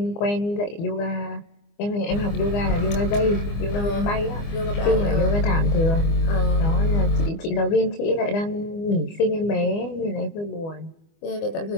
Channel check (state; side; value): late; right; 24 ms